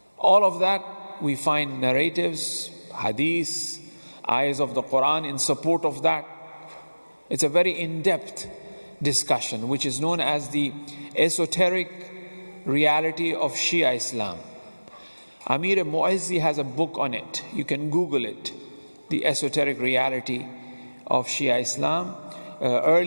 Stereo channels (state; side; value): inverted; both; correlation -1.00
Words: All of that we find narratives, hadiths, ayahs of the Quran in support of that. It's a very in-depth discussion, which is known as the esoteric reality of Shia Islam. Amir Mu'izzi has a book on it. You can Google it. The esoteric reality of Shia Islam.